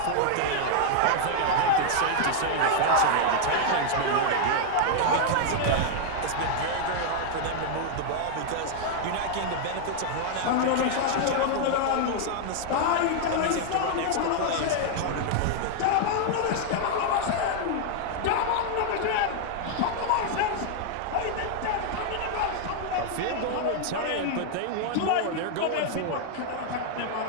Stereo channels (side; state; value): both; different; correlation 0.00